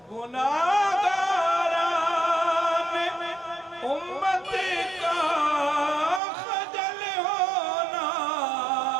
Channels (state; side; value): drops out; left; at 6.2 s